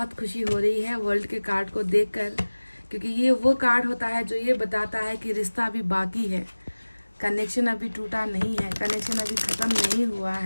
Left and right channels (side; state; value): both; inverted; correlation -1.00